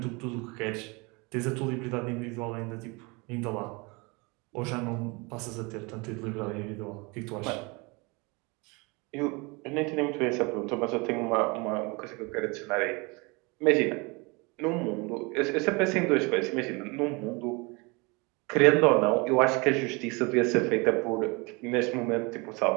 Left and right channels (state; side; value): quieter; left; 27.6 dB